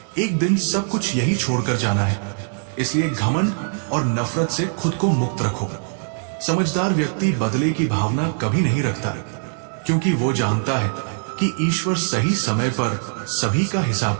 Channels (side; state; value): left; silent; digital silence